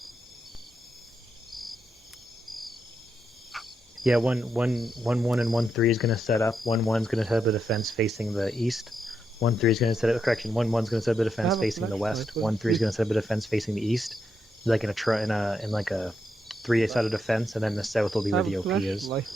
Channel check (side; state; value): both; normal; correlation 0.82